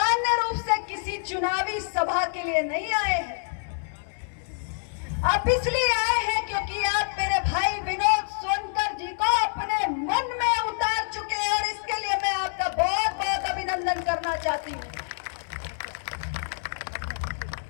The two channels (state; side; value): silent; right; 60 dB below the other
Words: रूप से किसी चुनावी सभा के लिए नहीं आए हैं। आप इसलिए आए हैं क्योंकि आप मेरे भाई विनोद सोनकर जी को अपने मन में उतार चुके हैं, और इसके लिए मैं आपका बहुत बहुत अभिनंदन करना चाहती हूं।